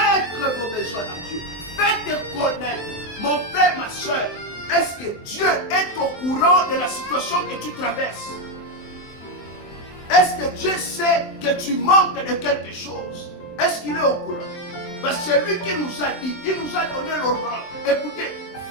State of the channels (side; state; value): right; late; 23 ms